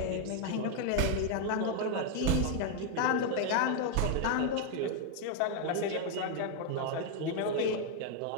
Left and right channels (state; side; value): different; both; correlation 0.00